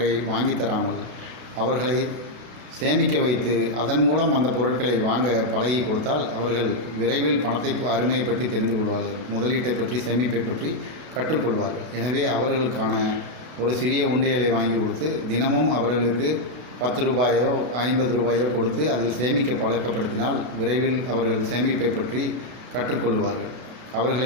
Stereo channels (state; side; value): late; left; 32 ms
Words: வாங்கி தராமல் அவர்களை சேமிக்க வைத்து அதன் மூலம் அந்த பொருட்களை வாங்க பழகி கொடுத்தால் அவர்கள் விரைவில் பணத்தை அருமையை பற்றி தெரிந்து கொள்வார்கள், முதலீட்டை பற்றி, சேமிப்பை பற்றி கற்றுக்கொள்வார்கள். எனவே அவர்களுக்கான ஒரு சிறிய உண்டியலை வாங்கி கொடுத்து தினமும் அவர்களுக்கு 10 ரூபாயோ 50 ரூபாயோ கொடுத்து அதில் சேமிக்க பழக்கப்படுத்தினால் விரைவில் அவர்கள் சேமிப்பை பற்றி கற்றுக்கொள்வார்கள். அவர்களை